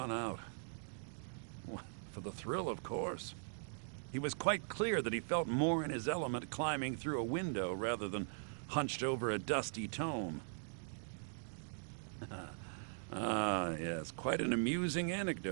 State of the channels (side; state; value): left; silent; digital silence